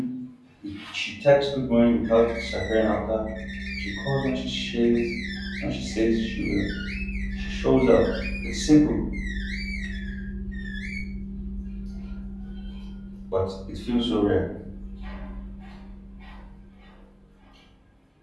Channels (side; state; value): both; identical; correlation 1.00